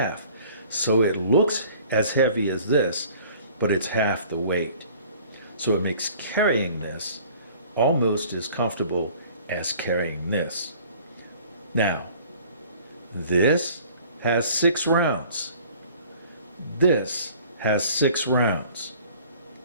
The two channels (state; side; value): inverted; both; correlation -0.51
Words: so it looks as heavy as this, but it's half the weight. So it makes carrying this almost as comfortable as carrying this. Now, this has 6 rounds. This has 6 rounds.